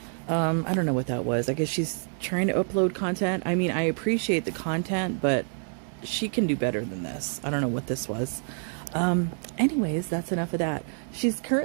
I don't know what that was. I guess she's trying to upload content. I mean, I appreciate the content, but she can do better than this. I don't know what this was. Anyways, that's enough of that. She's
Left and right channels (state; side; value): silent; left; 56 dB below the other